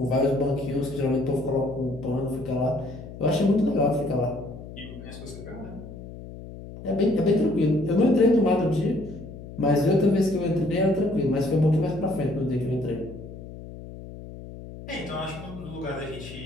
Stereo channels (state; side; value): noise; left; hum, 13 dB below the sound